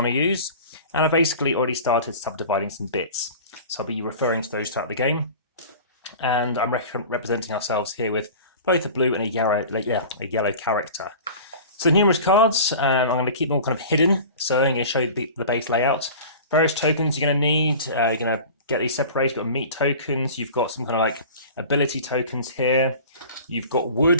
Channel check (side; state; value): both; inverted; correlation -0.39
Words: to use. And I've basically already started subdividing some bits. So I'll be referring to those throughout the game. And I'm representing ourselves here with both a blue and a yellow character. So numerous cards. I'm going to keep them all kind of hidden. So I'm going to show you the base layout. Various tokens you're going to need. You're going to get these separated. You've got meat tokens. You've got some kind of like ability tokens here. You've got